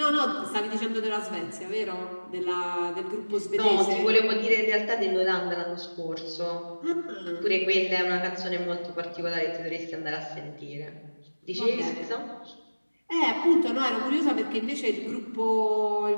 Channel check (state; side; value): inverted; both; correlation -1.00